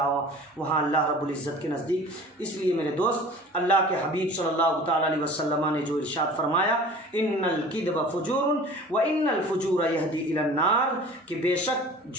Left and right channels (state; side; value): normal; both; correlation 0.43